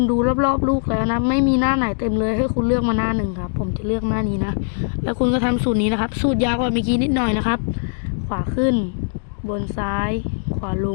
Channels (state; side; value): silent; right; digital silence